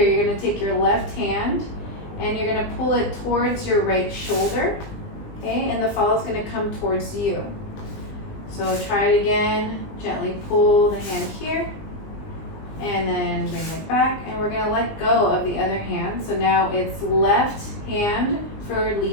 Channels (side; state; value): right; late; 19 ms